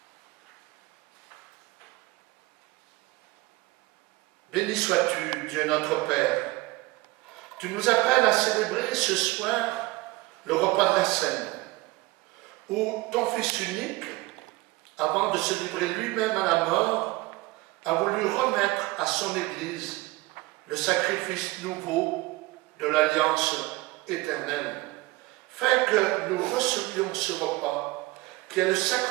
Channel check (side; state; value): left; quieter; 21.1 dB